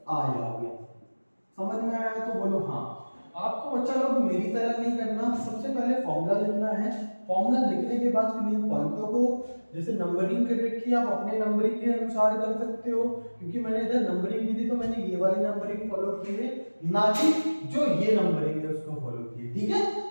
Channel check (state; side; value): inverted; both; correlation -1.00